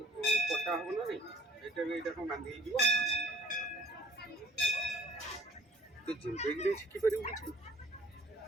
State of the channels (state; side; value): normal; both; correlation 0.53